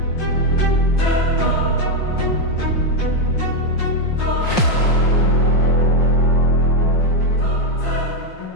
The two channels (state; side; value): late; right; 5.6 ms